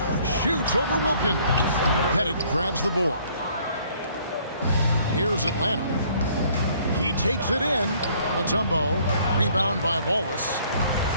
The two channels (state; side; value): inverted; both; correlation -0.60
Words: Shoots over Wilkins. Pettit grabs the board. Here's Atlanta. He takes it in. Mutombo. Rebound by Wallace.